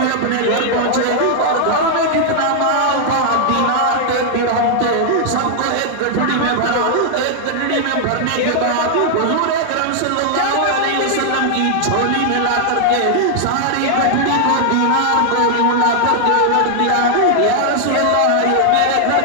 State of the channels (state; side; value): different; both; correlation 0.00